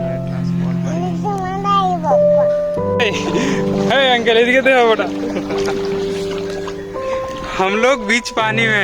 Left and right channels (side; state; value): both; identical; correlation 1.00